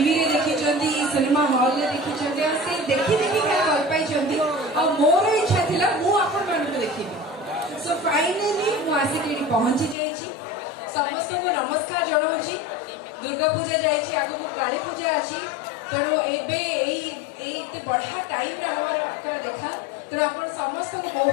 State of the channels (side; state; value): right; drops out; at 10.0 s